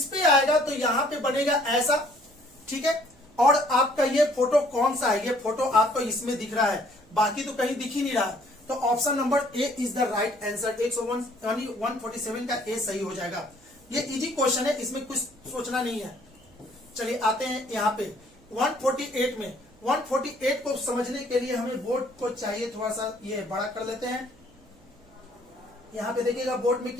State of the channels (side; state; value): right; noise; hum, 28 dB below the sound